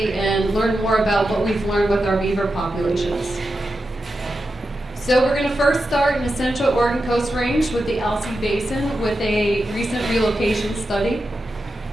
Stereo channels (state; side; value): normal; both; correlation 0.89